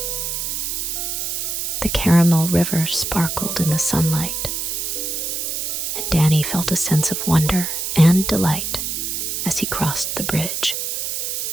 The caramel river sparkled in the sunlight, and Danny felt a sense of wonder and delight as he crossed the bridge.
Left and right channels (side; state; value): right; noise; hiss, 2 dB below the sound